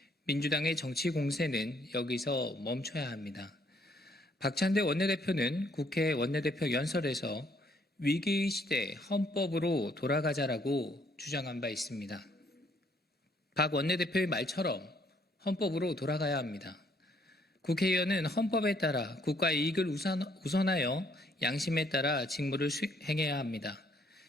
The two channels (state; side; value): normal; both; correlation 0.66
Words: 민주당의 정치 공세는 여기서 멈춰야 합니다. 박찬대 원내대표는 국회 원내대표 연설에서 위기의 시대 헌법으로 돌아가자라고 주장한 바 있습니다. 박 원내대표의 말처럼 헌법으로 돌아가야 합니다. 국회의원은 헌법에 따라 국가의 이익을 우선하여 양심에 따라 직무를 수행해야 합니다.